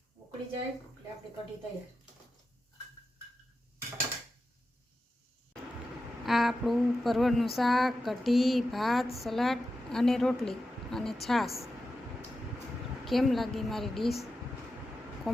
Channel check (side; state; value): both; normal; correlation 0.91